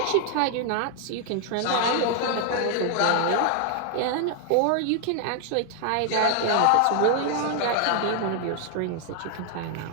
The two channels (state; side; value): different; both; correlation 0.00